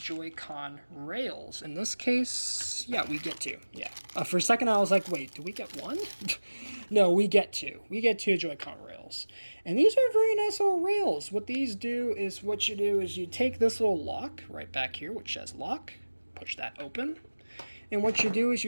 rails. In this case, yeah, we get two. Yeah. For a second I was like, wait, do we get one? No, we get two. We get two Joy-Con rails. And these are very nice little rails. What these do is, you take this little lock right back here, which says lock, push that open, And what you do is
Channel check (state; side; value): inverted; both; correlation -1.00